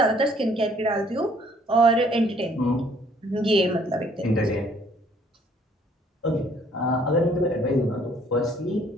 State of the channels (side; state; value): both; normal; correlation 0.61